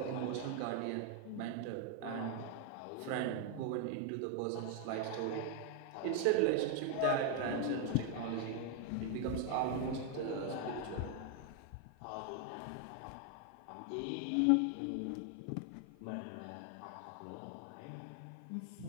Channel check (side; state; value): both; different; correlation 0.01